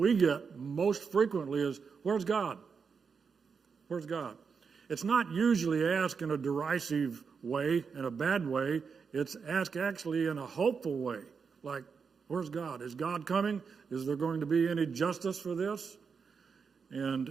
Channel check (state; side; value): quieter; left; 5.8 dB